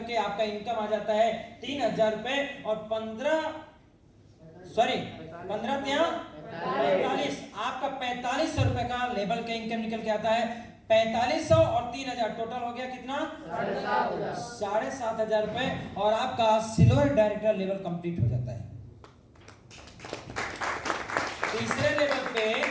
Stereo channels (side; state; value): both; identical; correlation 1.00